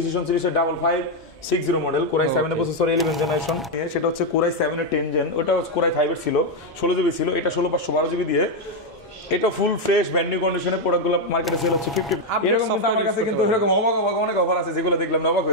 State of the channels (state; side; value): normal; both; correlation 0.03